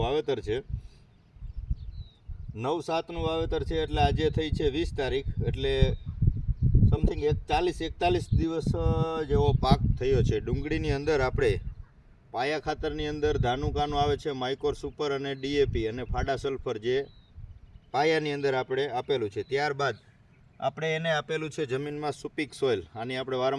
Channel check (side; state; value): both; identical; correlation 1.00